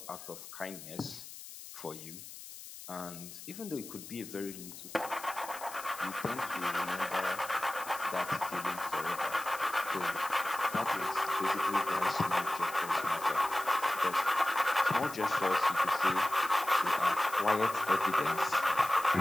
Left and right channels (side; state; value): left; noise; hiss, 14 dB below the sound